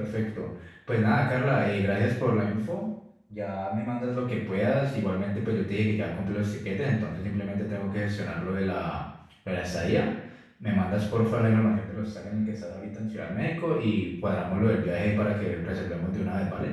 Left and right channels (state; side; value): identical; both; correlation 1.00